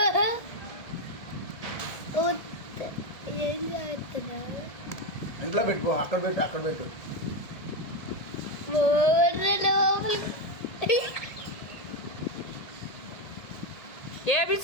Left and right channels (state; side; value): late; right; 1.7 ms